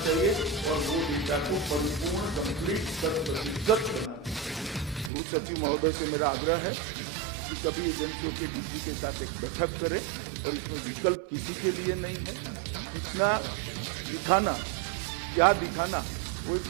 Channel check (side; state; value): left; drops out; at 5.1 s